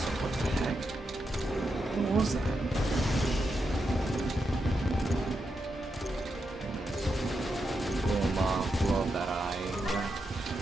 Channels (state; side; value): normal; both; correlation 0.85